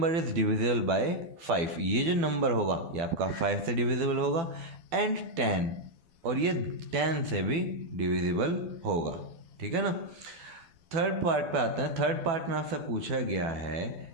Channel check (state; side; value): late; left; 12 ms